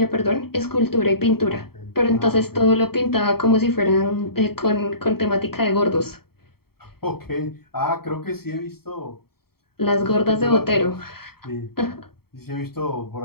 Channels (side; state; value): right; late; 0.95 ms